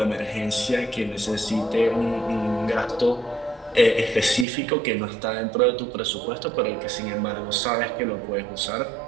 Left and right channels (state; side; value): drops out; left; at 4.5 s